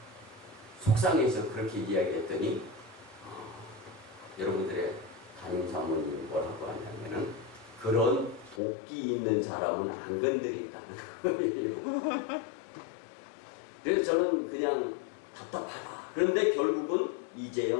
속상해서 그렇게 이야기했더니 여러분들의 담임사모님이 뭐라고 하냐면은, 그런 도끼 있는 사람은 안 건드린다는 거예요. 그래서 저는 그냥 답답하다. 그런데 결국은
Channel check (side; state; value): right; drops out; at 8.6 s